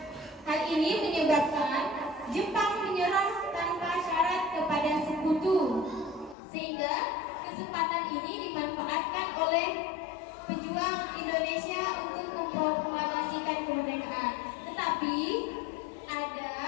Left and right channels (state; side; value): drops out; right; at 6.4 s